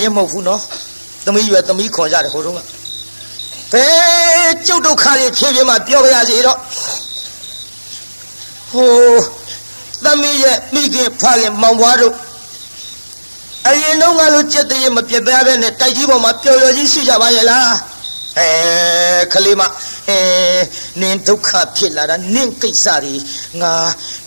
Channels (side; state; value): both; inverted; correlation -1.00